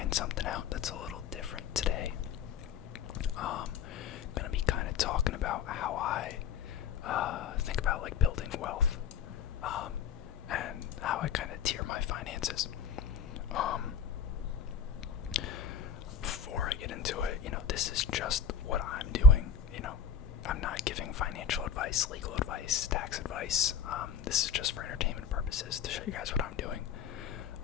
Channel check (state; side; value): quieter; right; 5.9 dB